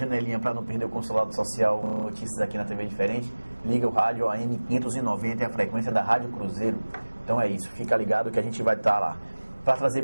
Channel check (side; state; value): both; inverted; correlation -1.00